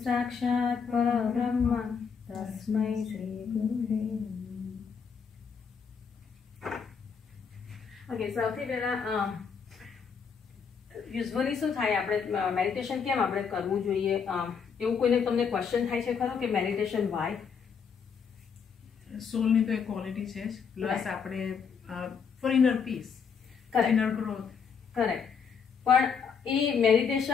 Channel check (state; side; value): quieter; right; 6.3 dB